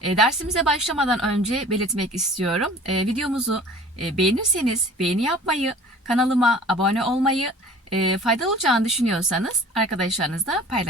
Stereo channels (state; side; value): normal; both; correlation 0.45